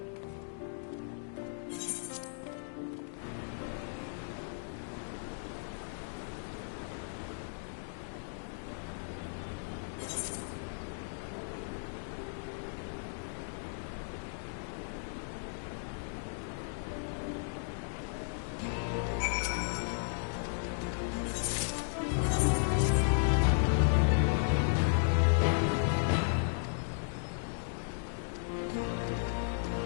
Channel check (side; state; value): right; silent; digital silence